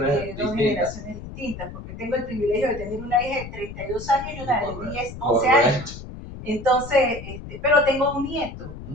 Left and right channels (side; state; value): left; noise; rumble, 12 dB below the sound